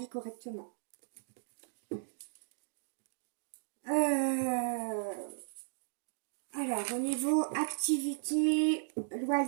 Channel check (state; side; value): silent; left; digital silence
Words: correctement. Alors, au niveau activité,